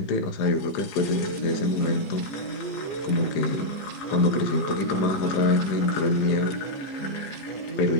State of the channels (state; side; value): late; right; 15 ms